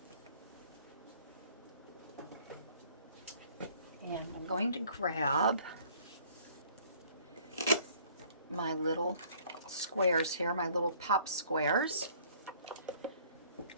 And I'm going to grab my little squares here, my little pop squares.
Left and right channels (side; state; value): both; inverted; correlation -0.57